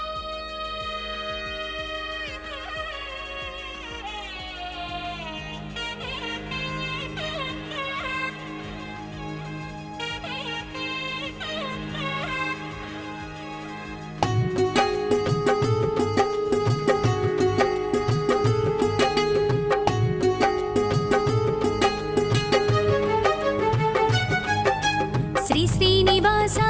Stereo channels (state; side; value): identical; both; correlation 1.00